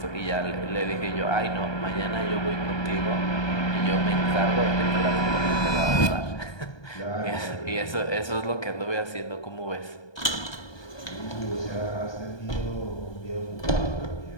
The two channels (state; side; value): late; right; 1.2 ms